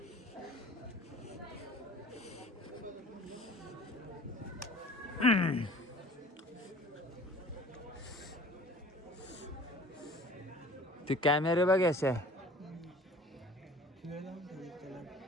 ते कॅमेरे बघ असे.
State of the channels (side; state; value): both; normal; correlation 0.47